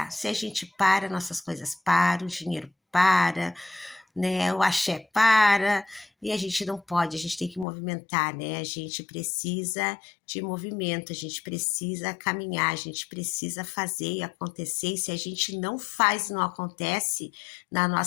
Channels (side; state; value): right; drops out; at 7.7 s